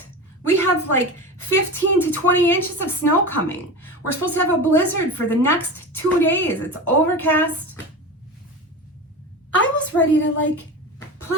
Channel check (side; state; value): both; normal; correlation 0.28